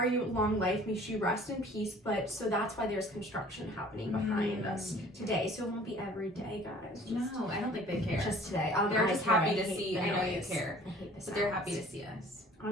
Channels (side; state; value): both; normal; correlation 0.50